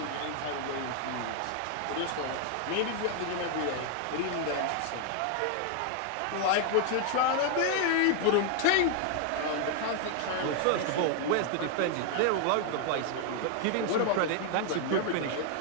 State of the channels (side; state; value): both; different; correlation 0.00